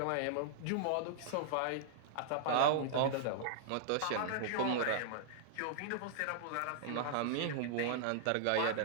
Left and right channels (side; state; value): both; different; correlation -0.01